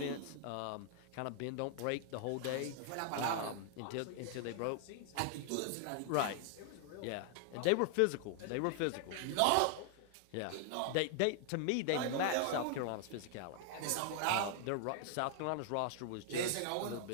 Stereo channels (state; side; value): different; both; correlation 0.00